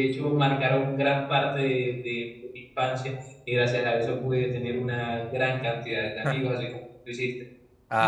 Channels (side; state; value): both; identical; correlation 1.00